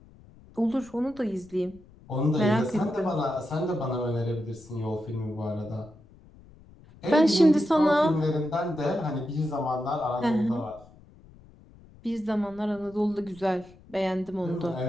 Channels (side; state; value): left; noise; rumble, 24 dB below the sound